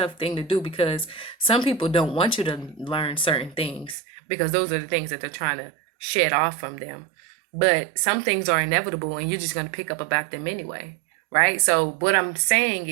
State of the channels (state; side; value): drops out; left; at 4.0 s